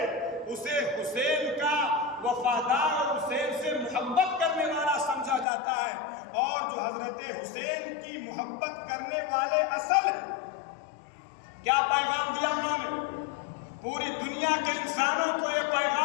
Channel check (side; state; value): right; drops out; at 5.5 s